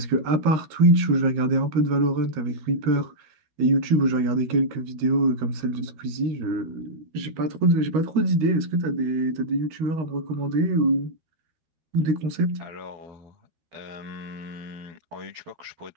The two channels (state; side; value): late; left; 13 ms